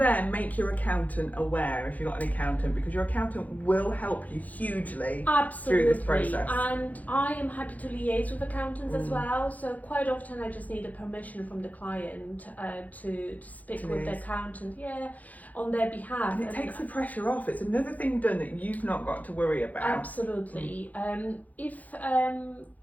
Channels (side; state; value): right; late; 0.078 ms